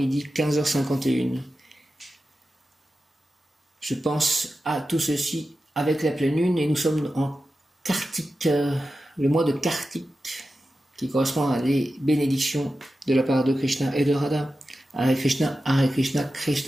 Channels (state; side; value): normal; both; correlation 0.92